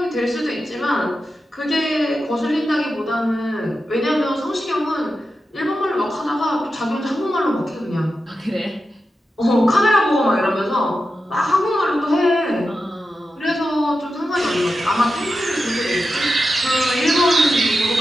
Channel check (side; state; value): both; normal; correlation 0.90